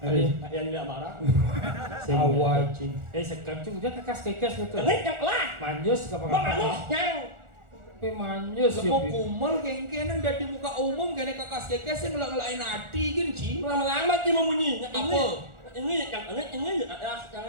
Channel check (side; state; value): left; late; 1.4 ms